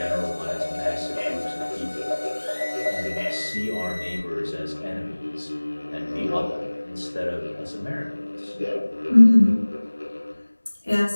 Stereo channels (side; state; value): both; inverted; correlation -1.00